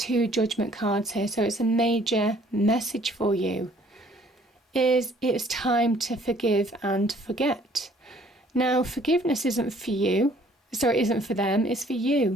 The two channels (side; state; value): both; normal; correlation 0.59